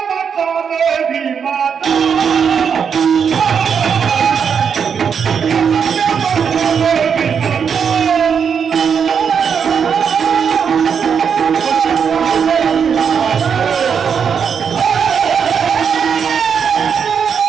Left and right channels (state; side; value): quieter; left; 6.9 dB